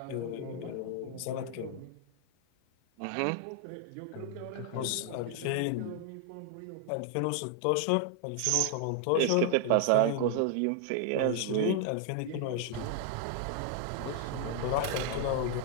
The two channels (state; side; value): different; both; correlation 0.00